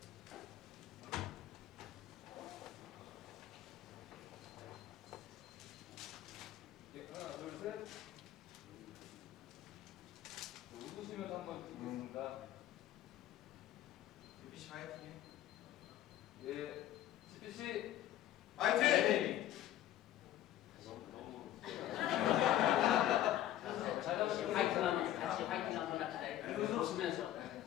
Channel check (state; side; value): quieter; right; 12.7 dB